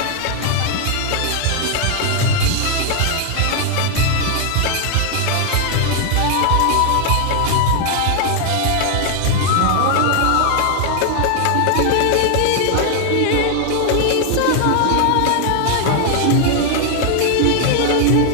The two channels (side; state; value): both; different; correlation 0.00